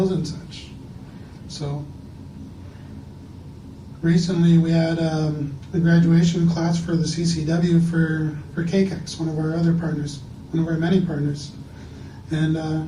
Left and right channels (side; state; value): both; identical; correlation 1.00